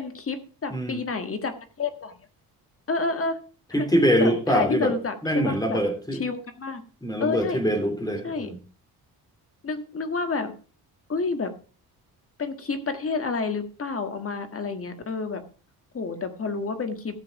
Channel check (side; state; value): both; normal; correlation 0.40